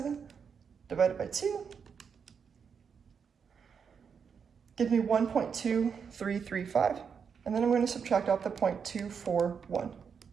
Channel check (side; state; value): left; quieter; 6.5 dB